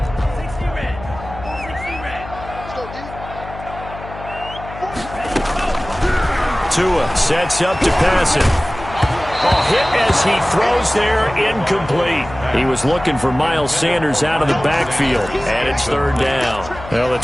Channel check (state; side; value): noise; left; hum, 14 dB below the sound